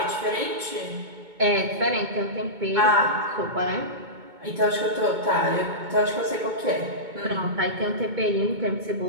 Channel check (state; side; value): late; left; 2.2 ms